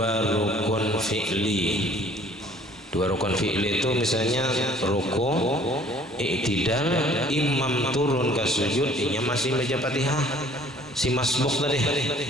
rukun fi'li. Dua rukun fi'li itu misalnya ruku, i'tidal, imam turun ke sujud, inya masih baca Fatihah si masbuk tadi,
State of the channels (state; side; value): normal; both; correlation 0.55